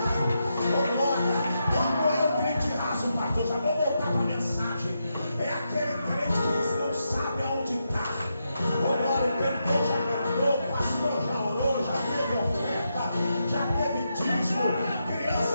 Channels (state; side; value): inverted; both; correlation -0.84